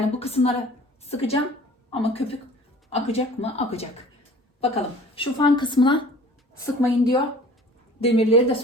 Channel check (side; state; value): both; normal; correlation 0.47